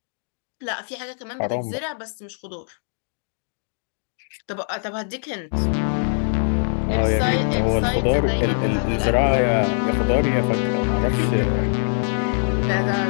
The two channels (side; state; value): right; silent; digital silence